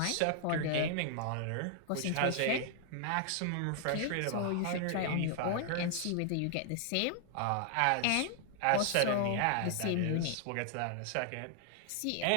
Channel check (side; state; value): both; different; correlation 0.00